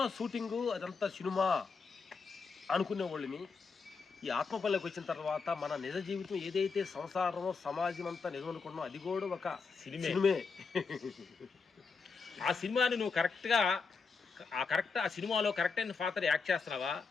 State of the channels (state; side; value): quieter; right; 4.9 dB